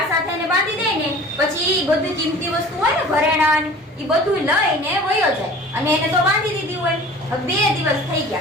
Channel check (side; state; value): both; normal; correlation 0.44